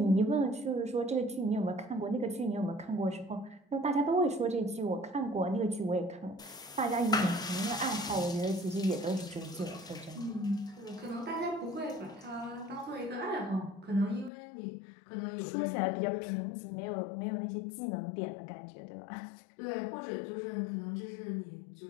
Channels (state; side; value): drops out; right; at 14.3 s